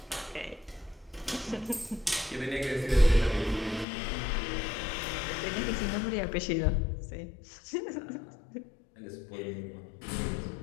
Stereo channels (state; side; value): drops out; right; at 3.9 s